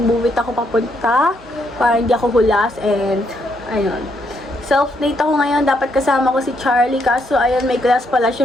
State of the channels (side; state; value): both; normal; correlation 0.75